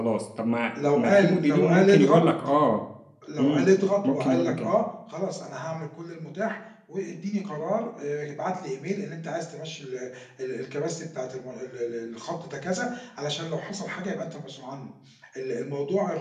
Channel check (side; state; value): both; identical; correlation 1.00